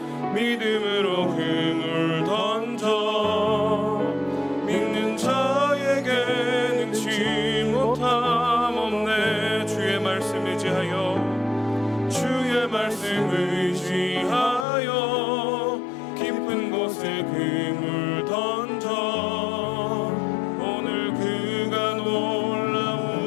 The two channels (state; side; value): drops out; right; at 14.7 s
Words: 믿음으로 그물 던져 믿는 자에게 능치 못함 없네. 주의 말씀 의지하여 주의 말씀 의지하여 깊은 곳에 그물 던져 오늘 그가